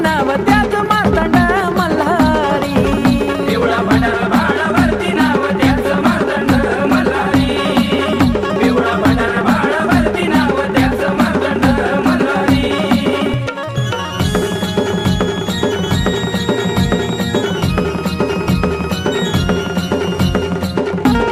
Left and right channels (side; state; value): both; identical; correlation 1.00